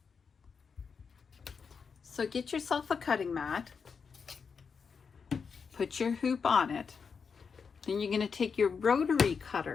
So get yourself a cutting mat, put your hoop on it, then you're going to take your rotary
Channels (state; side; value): quieter; right; 5.8 dB